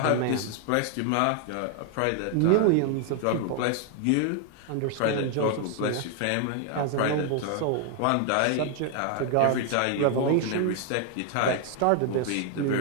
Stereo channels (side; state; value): both; different; correlation 0.00